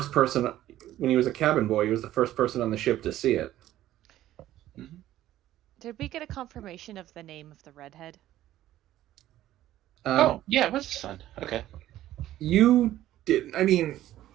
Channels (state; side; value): quieter; left; 13.7 dB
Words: person, when he was a cabin boy, he was the first person on the ship to see it. Mm-hmm. Did we get a confirmation of the name of the redhead? Oh, yeah, it was his son. Okay. You didn't. I mean,